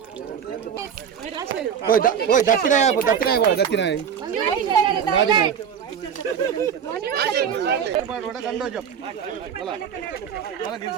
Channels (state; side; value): quieter; left; 7.8 dB